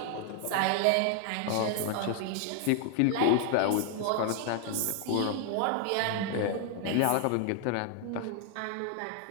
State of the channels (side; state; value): both; different; correlation 0.00